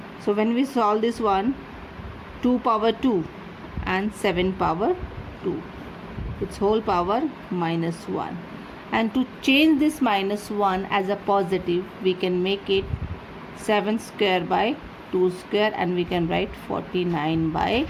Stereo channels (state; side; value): identical; both; correlation 1.00